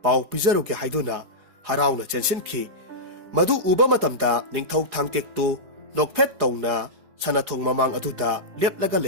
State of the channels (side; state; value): left; late; 4.9 ms